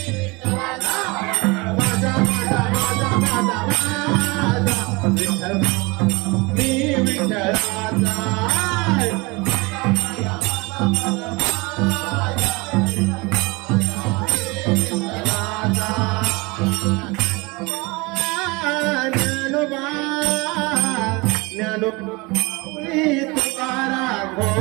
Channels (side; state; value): left; quieter; 25.7 dB